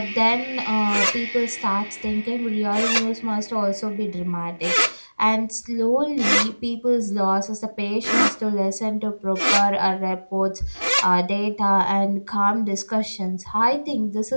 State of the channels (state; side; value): inverted; both; correlation -1.00